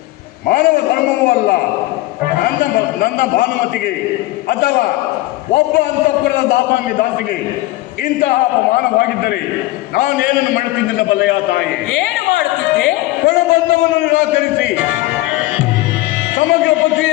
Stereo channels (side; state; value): right; quieter; 18.1 dB